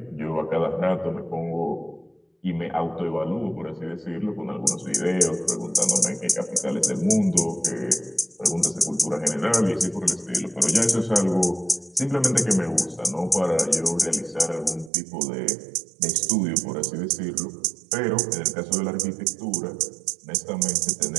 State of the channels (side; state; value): left; drops out; at 14.9 s